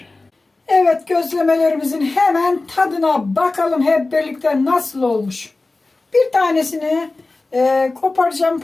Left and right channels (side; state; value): right; quieter; 3.3 dB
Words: Evet, gözlemelerimizin hemen tadına bakalım hep birlikte nasıl olmuş. Bir tanesini koparacağım,